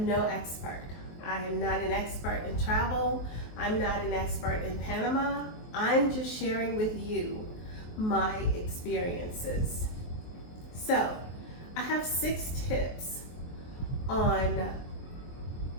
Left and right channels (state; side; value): late; right; 23 ms